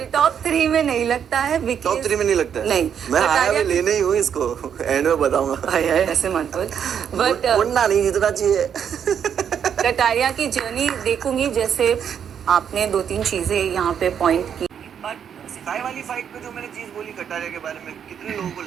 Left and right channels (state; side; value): quieter; left; 8.2 dB